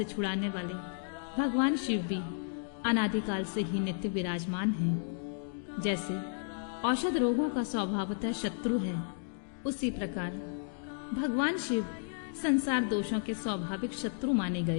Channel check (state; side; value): silent; right; digital silence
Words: छुड़ाने वाले भगवान शिव भी अनादिकाल से ही नित्य विराजमान हैं। जैसे औषध रोगों का स्वभावतः शत्रु है, उसी प्रकार भगवान शिव संसार दोषों के स्वाभाविक शत्रु माने